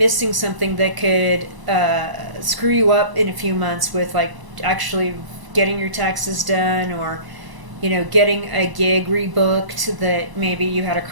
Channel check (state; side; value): late; left; 1.0 ms